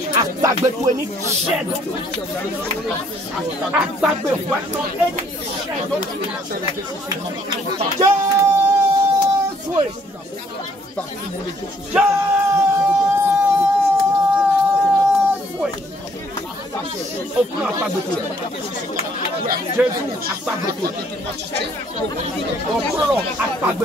Jésus a pas de tout. On prend à pas de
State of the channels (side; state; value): both; normal; correlation 0.64